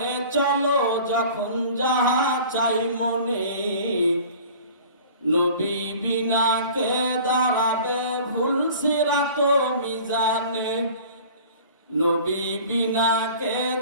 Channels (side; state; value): both; inverted; correlation -0.44